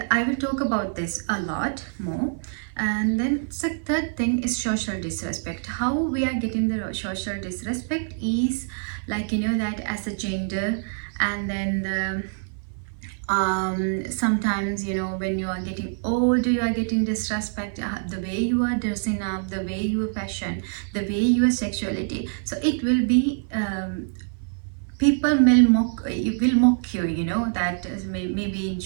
I will talk about this a lot more. And then the third thing is social disrespect. How we are getting the social disrespect is like that as a gender, and then sometimes when you are getting older, you are getting disrespect, the way you are dressing up, the way you fashion, the way your sexuality. So it will be people will mock you, that maybe in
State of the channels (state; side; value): silent; left; 56 dB below the other